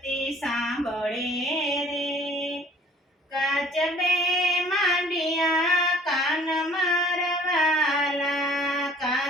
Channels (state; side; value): normal; both; correlation 0.54